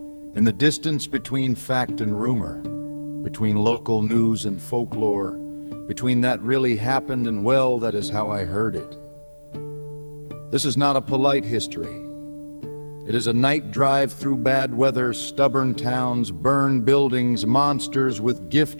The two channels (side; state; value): both; inverted; correlation -1.00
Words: in the distance between fact and rumor, between local news and folklore, between that really happened and, well, that is how I heard it. This is not a polite history. It is a night drive through bad weather, stubborn towns, burned buildings, monsters with gift